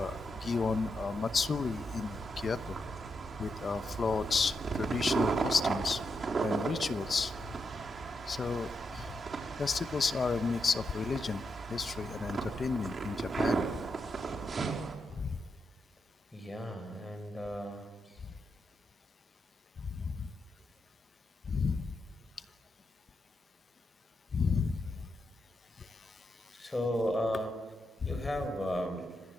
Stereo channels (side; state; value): both; normal; correlation 0.83